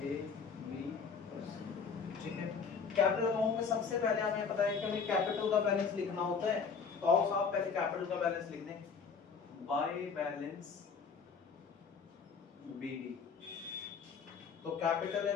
बी और सी। ठीक है। कैपिटल अकाउंट में सबसे पहले हमें पता है कि हमें कैपिटल का बैलेंस लिखना होता है, तो आओ साहब पहले कैपिटल का बैलेंस लिख दें बाय बैलेंस बीडी। तो कैपिटल है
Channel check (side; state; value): right; quieter; 5.7 dB